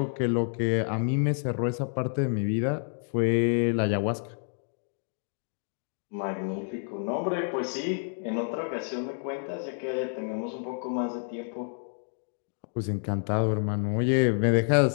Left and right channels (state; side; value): silent; right; 59 dB below the other